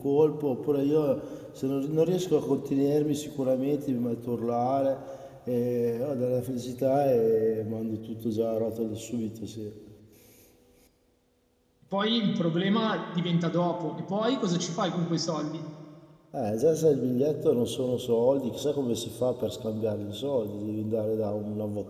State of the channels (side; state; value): both; identical; correlation 1.00